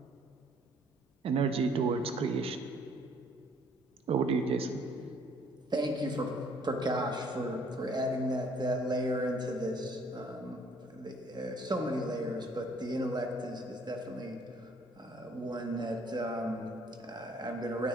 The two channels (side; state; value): both; normal; correlation 0.60